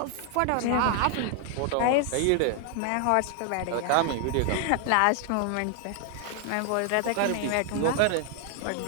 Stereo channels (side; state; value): both; different; correlation 0.00